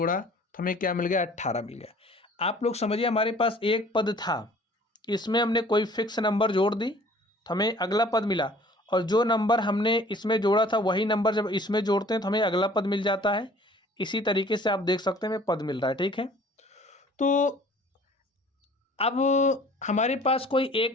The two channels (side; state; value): both; normal; correlation 0.52